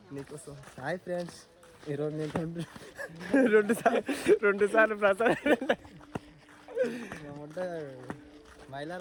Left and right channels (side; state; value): both; identical; correlation 1.00